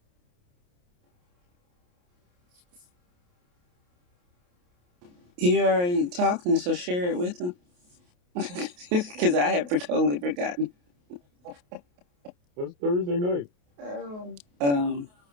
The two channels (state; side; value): late; left; 28 ms